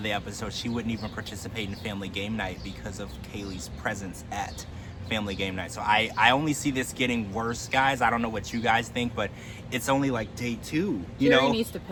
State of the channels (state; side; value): identical; both; correlation 1.00